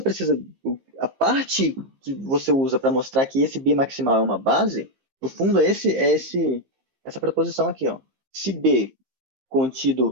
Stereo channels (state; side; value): late; left; 15 ms